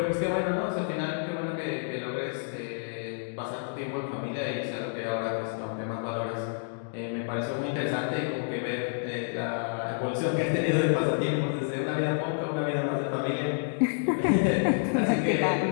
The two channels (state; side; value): silent; right; digital silence